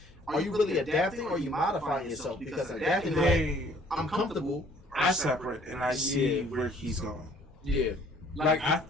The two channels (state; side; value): normal; both; correlation 0.58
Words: Are you really adapting or are you modifying yourself? Because adapting, like, I'm comfortable. I separate and I see where he's going. Yeah, like